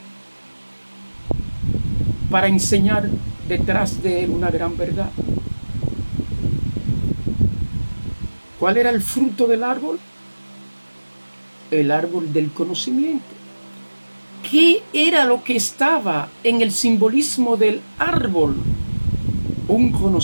para enseñar detrás de él una gran verdad. ¿Cuál era el fruto del árbol? El árbol del conocimiento. ¿Qué era lo que estaba en el simbolismo del árbol? Un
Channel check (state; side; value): inverted; both; correlation -1.00